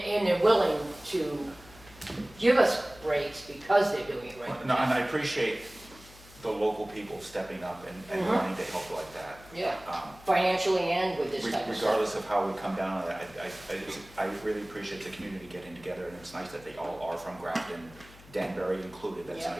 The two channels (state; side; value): noise; left; hum, 21 dB below the sound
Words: they're willing to give us breaks because they're doing it right. No, and I appreciate the local people stepping up and Mhm. wanting to help like that. Yeah, Um, financially and with this type of stuff. Regardless of how we come down on that, I really appreciate the community getting together, and it's nice that they all are from Grafton, Danbury included. That's Yeah.